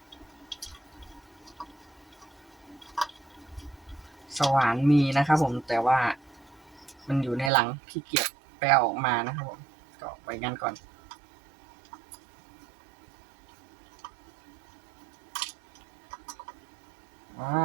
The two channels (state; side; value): drops out; left; at 7.5 s